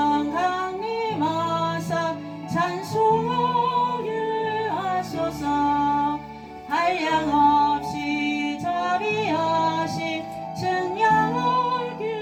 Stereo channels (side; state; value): both; identical; correlation 1.00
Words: 강림 와서 찬송을 하소서. 한량없이 자비하신 증량을